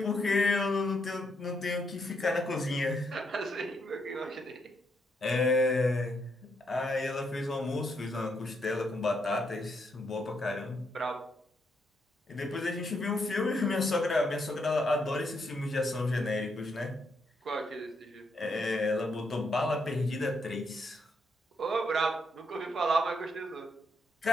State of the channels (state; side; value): normal; both; correlation 0.77